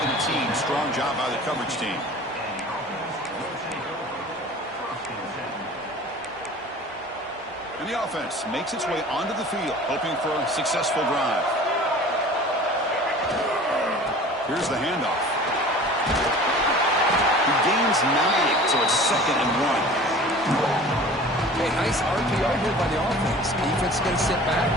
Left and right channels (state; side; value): normal; both; correlation 0.43